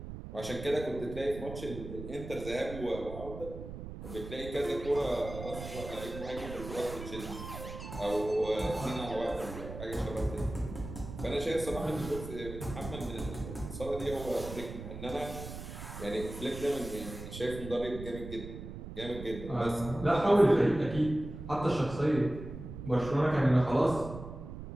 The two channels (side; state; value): right; noise; rumble, 10 dB below the sound